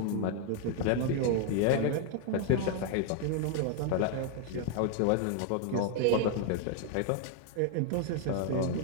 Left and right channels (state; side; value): different; both; correlation 0.00